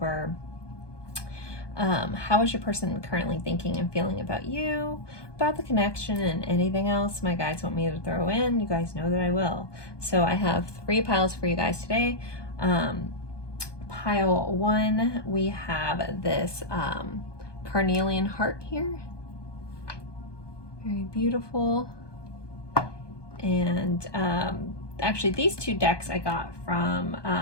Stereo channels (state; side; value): late; right; 1.2 ms